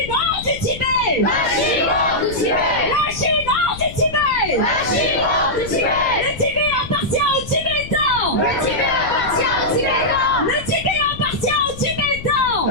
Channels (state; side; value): noise; left; rumble, 13 dB below the sound